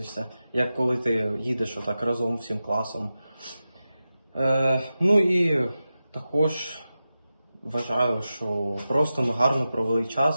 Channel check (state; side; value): inverted; both; correlation -0.93